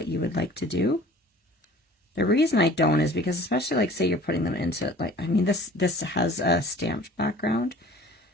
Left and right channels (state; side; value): normal; both; correlation 0.47